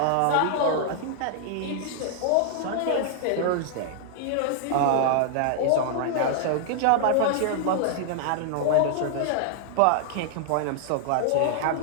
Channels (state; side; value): different; both; correlation -0.01